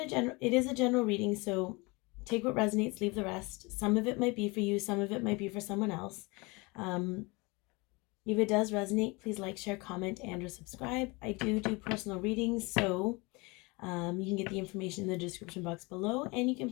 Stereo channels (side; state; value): right; quieter; 26.2 dB